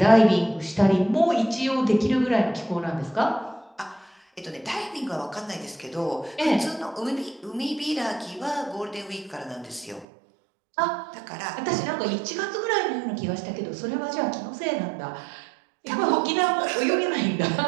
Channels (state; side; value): drops out; left; at 10.1 s